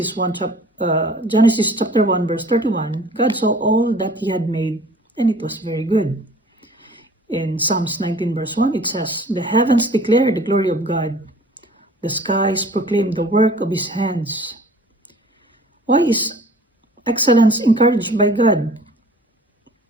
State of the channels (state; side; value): normal; both; correlation 0.49